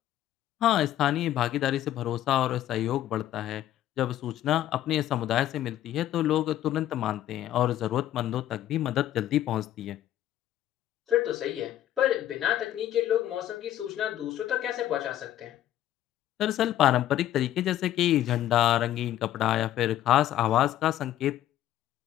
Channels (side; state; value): right; quieter; 12.6 dB